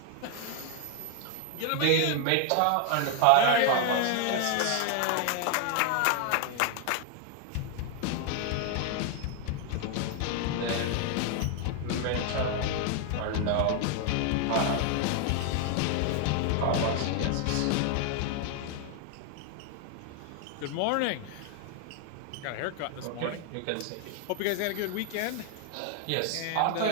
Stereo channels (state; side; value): different; both; correlation 0.00